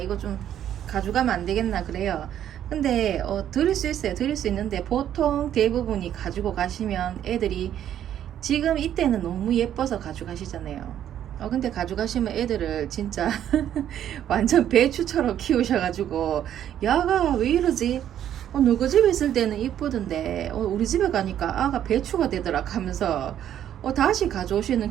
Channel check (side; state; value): left; quieter; 10.6 dB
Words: 좀 가져가면 안 되겠나 그래요. 근데 드릴 수 있어요. 드릴 수 있는데 보통 대부분이 가지고 가시면 애들이 지금 이때는 너무 예뻐서 가져가시잖아요. 근데 가져가시면 애들을 진짜 완전 배추처럼 키우셔가지고 야가 왜 이러지? 누구 집에 있을 때는 이쁘던데 우리 집에 가니까 아가 배추가 되더라 하면서 다시 가져오시는